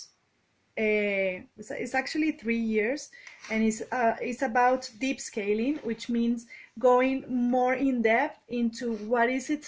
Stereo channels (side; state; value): both; identical; correlation 1.00